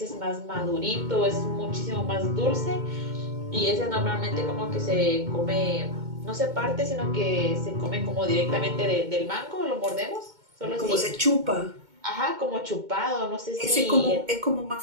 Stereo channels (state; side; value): late; left; 2.2 ms